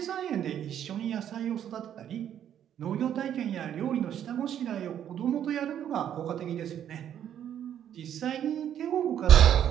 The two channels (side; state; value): left; quieter; 10.0 dB